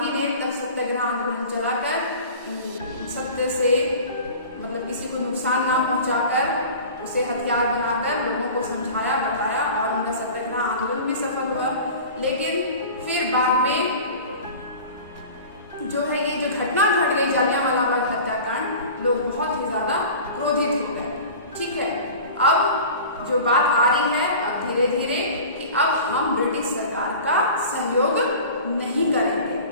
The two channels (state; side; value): inverted; both; correlation -0.39